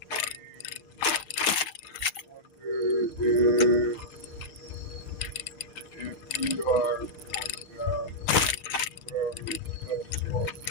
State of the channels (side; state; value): right; late; 6.5 ms